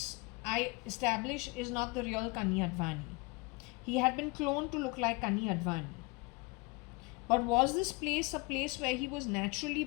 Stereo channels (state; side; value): quieter; right; 26.7 dB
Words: I establish, is not the real Kani Advani. He had been cloned to look like Kani Advani. But was this place a place where he was naturally